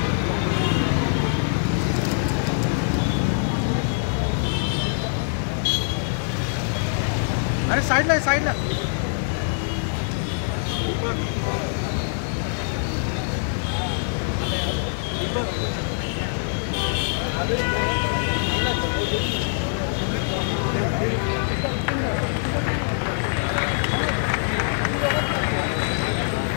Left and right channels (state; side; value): silent; right; digital silence